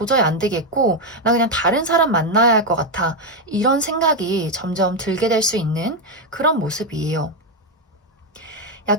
안 되겠고, 나 그냥 다른 사람 만나야 할 것 같아. 이런 생각이 점점 들게 될 수 있는 그런 모습이에요.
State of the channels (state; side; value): normal; both; correlation 0.05